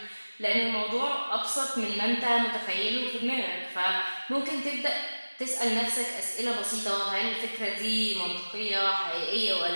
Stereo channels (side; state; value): both; inverted; correlation -1.00